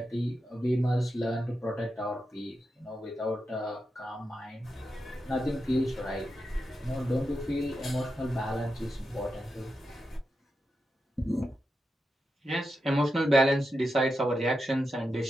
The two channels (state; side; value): normal; both; correlation 0.88